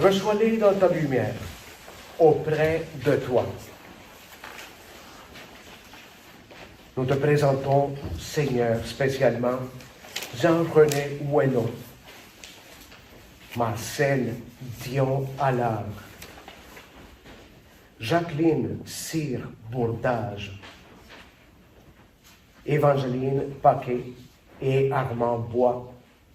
dans ta lumière, auprès de toi. Nous te présentons, Seigneur, spécialement Jean-René Ouello, Marcel Dion Allard, Jacqueline Cyr Bourdage, Évangeline Paquet et Armand Bois,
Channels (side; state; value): both; identical; correlation 1.00